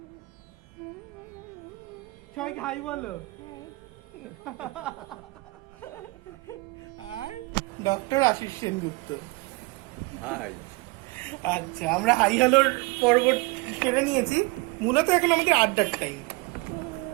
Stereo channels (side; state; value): left; quieter; 25.5 dB